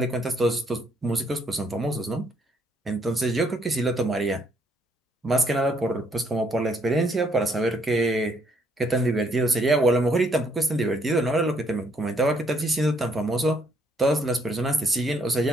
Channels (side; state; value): both; normal; correlation 0.69